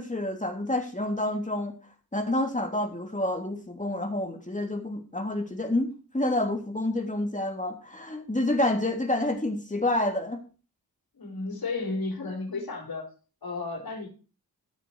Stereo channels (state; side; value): normal; both; correlation 0.38